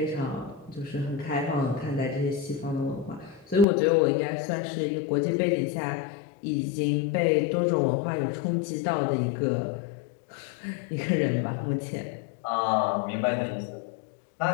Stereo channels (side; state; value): right; drops out; at 3.7 s